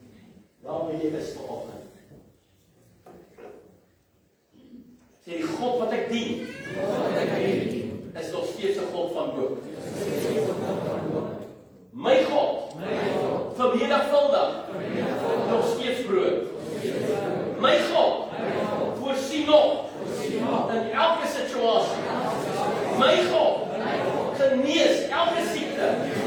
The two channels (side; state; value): both; identical; correlation 1.00